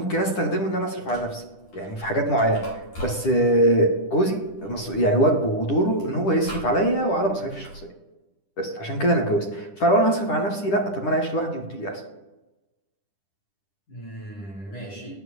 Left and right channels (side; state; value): right; late; 10 ms